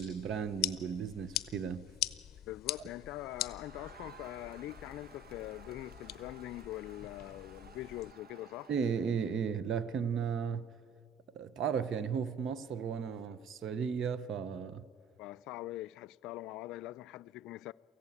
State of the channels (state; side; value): normal; both; correlation 0.46